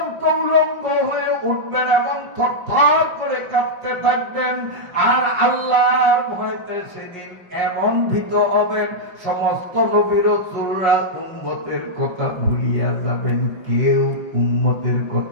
উলঙ্গ হয়ে উঠবেন এবং থরথর করে কাঁপতে থাকবেন। আর আল্লাহর ভয়তে সেদিন এমন ভীত হবেন, সমস্ত নবী রাসূলরা উম্মতের কথা ভুলিয়া যাবেন, কেউ উম্মতের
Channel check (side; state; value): left; late; 5.5 ms